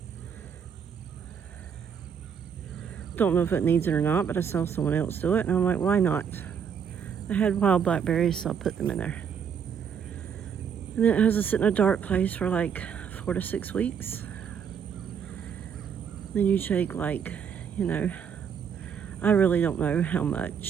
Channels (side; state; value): left; quieter; 7.4 dB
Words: Don't know if it needs it or not, but I saw someone else do it, and I'm like, why not? I had wild blackberries, so I put them in there. And then it has to sit in a dark place for like 4 to 6 weeks. Then you take like, you know, I really don't know how